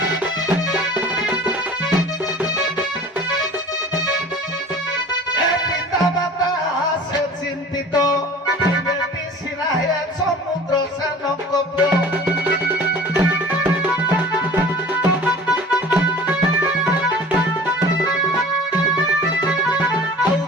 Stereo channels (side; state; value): both; normal; correlation 0.43